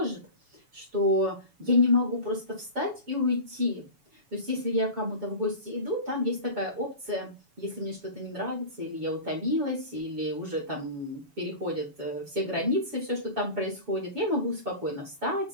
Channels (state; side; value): late; left; 7.1 ms